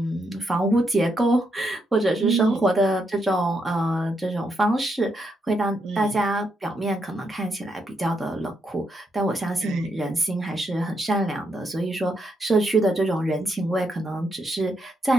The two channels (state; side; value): normal; both; correlation 0.79